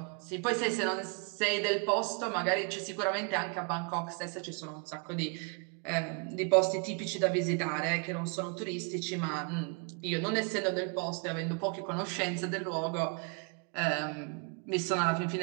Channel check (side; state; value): left; quieter; 36.4 dB